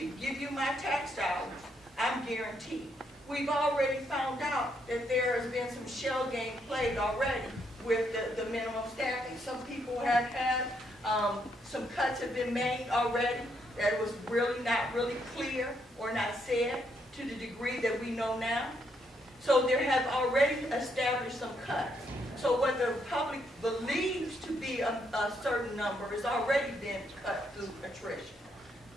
give you my tax dollars, I'm guaranteed. We've already found out that there has been some shell game played already with the minimum staffing. Some people have had Some cuts have been made already that was really not really clear or not said to the degree that we know now. So there have already established some cuts. So what the public believes to be a certain number has already been cut through attrition.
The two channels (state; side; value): normal; both; correlation 0.75